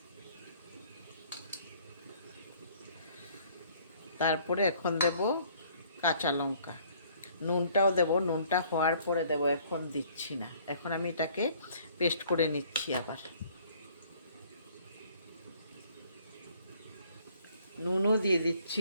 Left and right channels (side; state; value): both; inverted; correlation -0.59